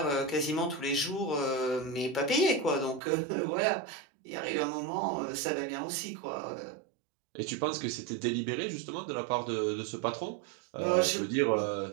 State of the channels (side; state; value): left; drops out; at 3.0 s